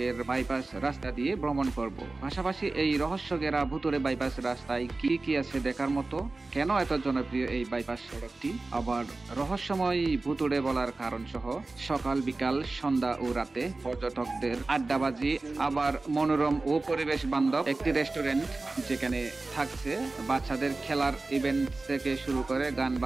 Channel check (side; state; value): left; quieter; 3.4 dB